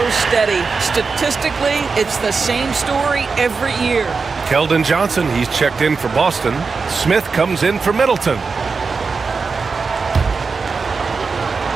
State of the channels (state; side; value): quieter; left; 4.7 dB